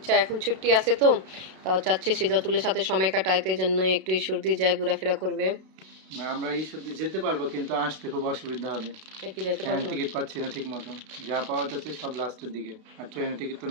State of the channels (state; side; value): late; left; 32 ms